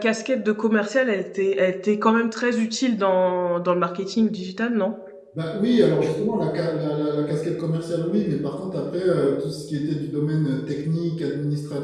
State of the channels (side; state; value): both; identical; correlation 1.00